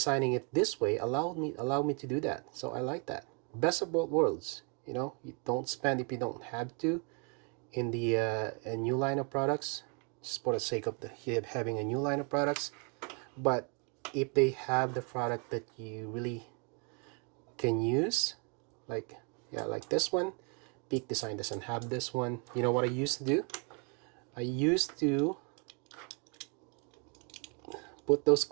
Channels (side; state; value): left; quieter; 35.9 dB